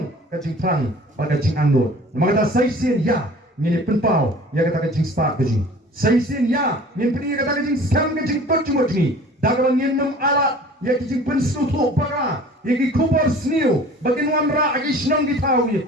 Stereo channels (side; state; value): both; normal; correlation 0.46